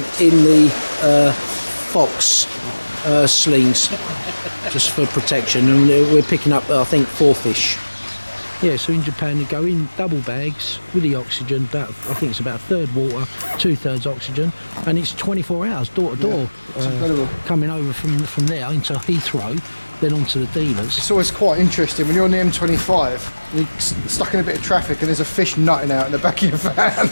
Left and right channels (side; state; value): both; inverted; correlation -1.00